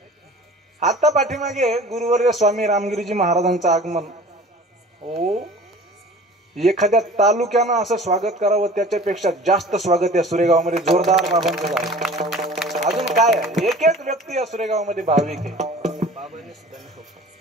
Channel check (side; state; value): both; normal; correlation 0.43